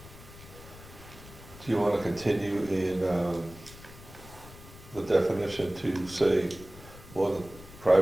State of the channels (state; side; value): noise; left; rumble, 18 dB below the sound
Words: Do you want to continue in the definition to say more than,